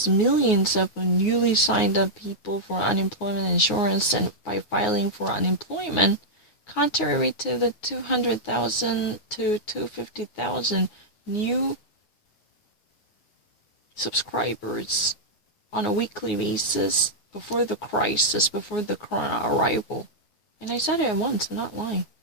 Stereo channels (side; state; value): right; late; 9.5 ms